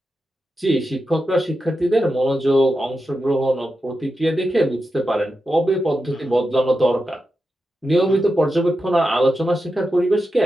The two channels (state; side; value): normal; both; correlation 0.89